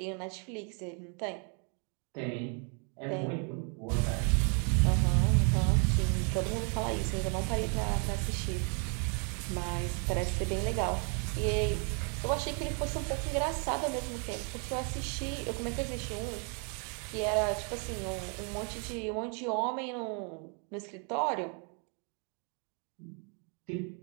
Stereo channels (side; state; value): left; quieter; 39.1 dB